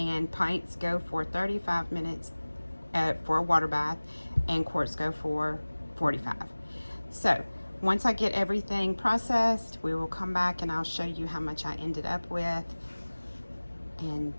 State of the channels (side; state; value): both; inverted; correlation -1.00